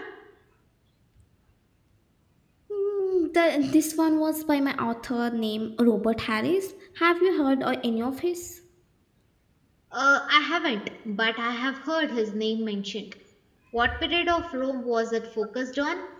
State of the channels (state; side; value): identical; both; correlation 1.00